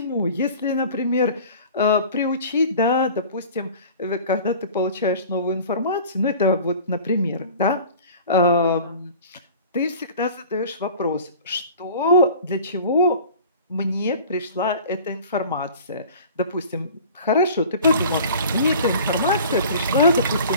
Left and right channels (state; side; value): inverted; both; correlation -0.43